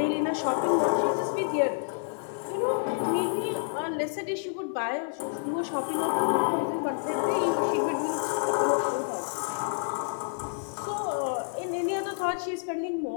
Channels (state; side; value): silent; right; 59 dB below the other